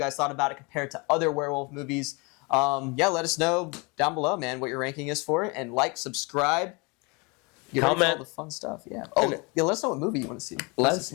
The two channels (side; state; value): right; quieter; 29.2 dB